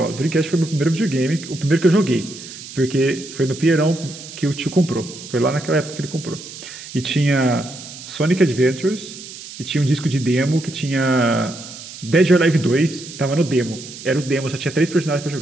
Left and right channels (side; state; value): right; noise; hiss, 14 dB below the sound